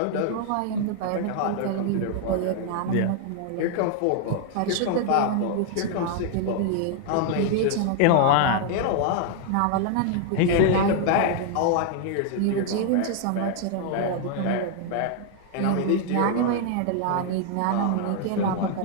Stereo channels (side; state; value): both; different; correlation 0.00